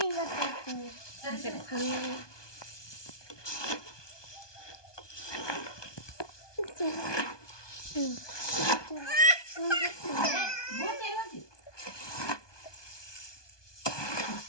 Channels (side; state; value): right; late; 1.2 ms